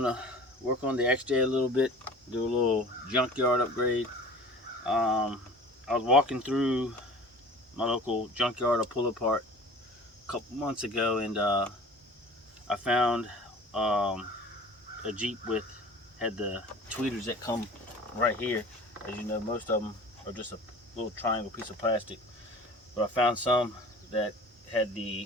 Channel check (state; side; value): normal; both; correlation 0.43